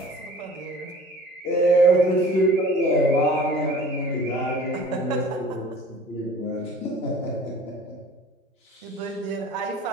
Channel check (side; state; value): both; normal; correlation 0.45